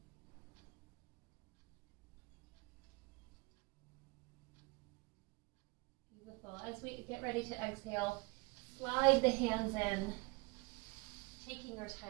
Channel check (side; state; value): left; quieter; 27.3 dB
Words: Beautiful. As we get ready to exhale, slide the hands in, taking your